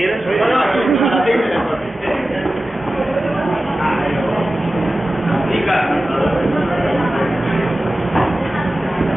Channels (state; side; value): normal; both; correlation 0.95